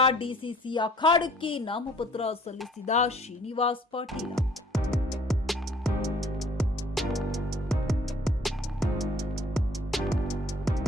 ಡಿಸಿಸಿ ಅಖಾಡಕ್ಕೆ ನಾಮಪತ್ರ ಸಲ್ಲಿಸಿದ ಶ್ರೀನಿವಾಸ್ ಪಾಟೀಲ್.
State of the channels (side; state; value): both; normal; correlation 0.57